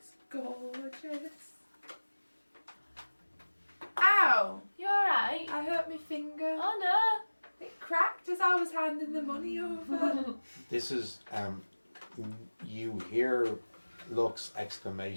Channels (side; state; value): both; inverted; correlation -1.00